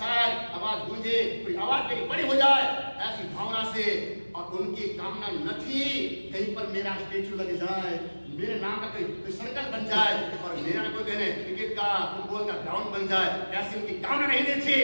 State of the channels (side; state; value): both; inverted; correlation -1.00